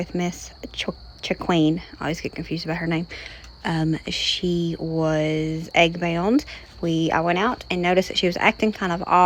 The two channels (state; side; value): identical; both; correlation 1.00